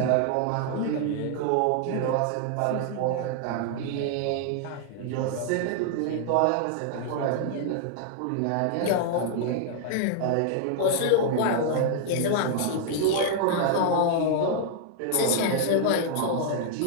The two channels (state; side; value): different; both; correlation -0.01